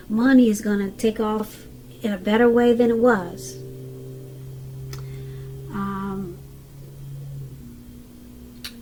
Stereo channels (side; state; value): both; identical; correlation 1.00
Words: money is going to take off in a better way than it was.